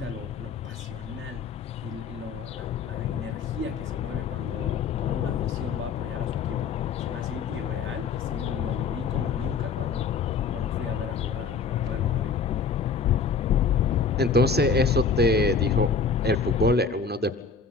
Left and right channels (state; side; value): quieter; right; 5.2 dB